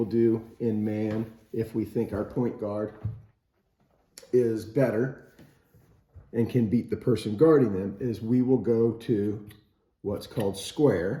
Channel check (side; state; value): both; identical; correlation 1.00